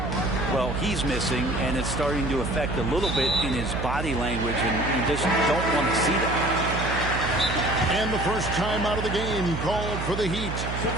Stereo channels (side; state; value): right; noise; hum, 4 dB below the sound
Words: Well, he's missing, and it's starting to affect a little bit in his body language, and you just don't want to see that. And the first time out of the game called for the Heat.